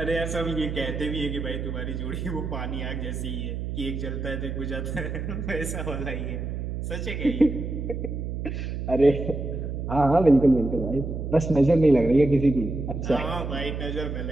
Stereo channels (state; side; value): noise; right; hum, 4 dB below the sound